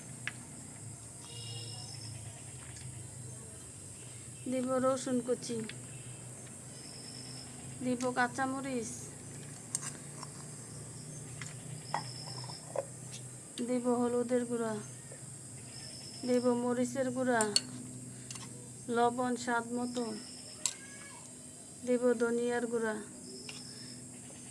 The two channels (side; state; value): both; identical; correlation 1.00